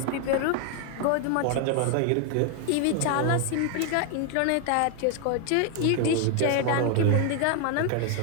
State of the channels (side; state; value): both; different; correlation 0.01